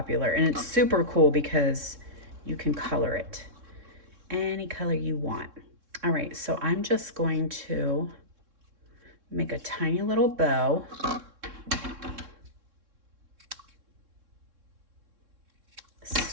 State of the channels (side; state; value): left; late; 3.6 ms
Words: and it's super cool because you can color it any color you want. All right, so I'm just going to make a tiny little bow.